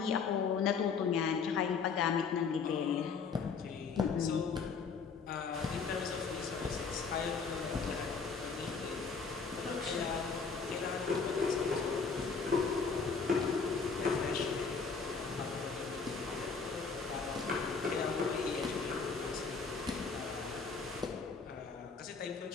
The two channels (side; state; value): right; quieter; 5.2 dB